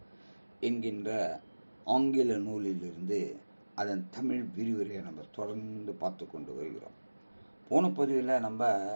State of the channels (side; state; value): both; inverted; correlation -1.00